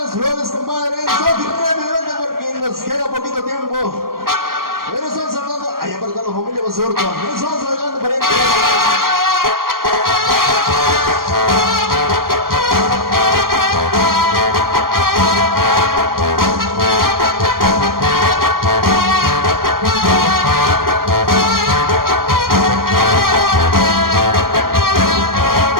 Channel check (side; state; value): left; late; 0.92 ms